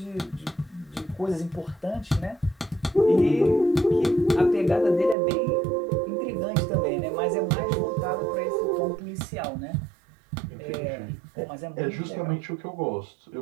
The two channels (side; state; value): left; drops out; at 5.2 s